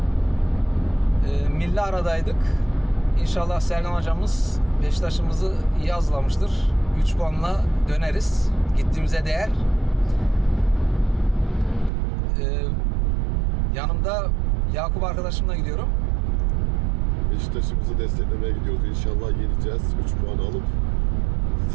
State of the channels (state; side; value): drops out; left; at 11.9 s